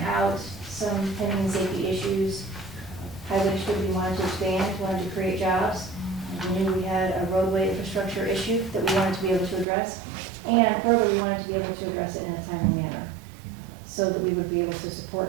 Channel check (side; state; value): left; drops out; at 9.7 s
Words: out, some pending safety issues. Highway Distributing wanted to expand, wanted to create jobs. We knew we had a roadway infrastructure issue that we wanted to be able to address. And further, we wanted to be able to address it in a timely manner so that we would be able to